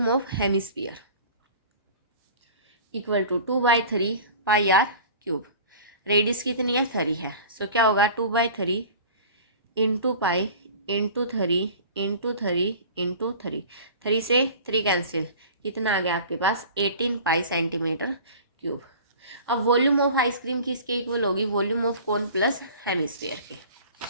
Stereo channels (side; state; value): both; inverted; correlation -0.42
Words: of hemisphere equal to 2/3 pi r cube. Radius कितनी है 3 है। सो क्या होगा 2/3 into pi into 3 into 3 into 3, 3 से 3 कैंसिल, कितना आ गया आपके पास 18 पाई सेंटीमीटर क्यूब। अब वॉल्यूम ऑफ आइसक्रीम किसके इक्वल होगी, volume of cone plus hemisphere के,